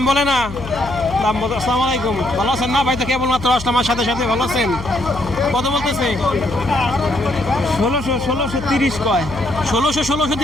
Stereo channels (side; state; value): left; noise; hum, 11 dB below the sound